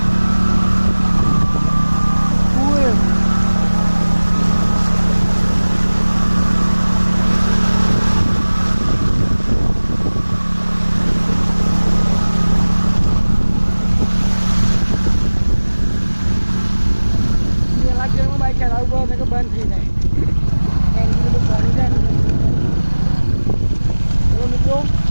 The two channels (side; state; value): both; inverted; correlation -1.00